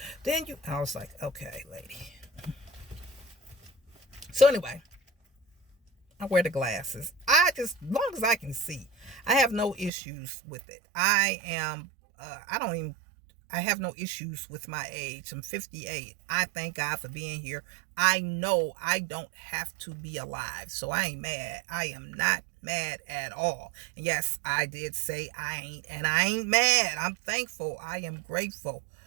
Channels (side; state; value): left; drops out; at 9.9 s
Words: then you... I was like, okay, lady. So anyway, I wear the glasses. As long as I can see, I have no issues with it. I have no issues with my age. I'm 58. I thank God for being here. I know I don't have to be alive, so I ain't mad. I am not mad at all. And yes, I did say I ain't mad. I'm thankful. I am grateful.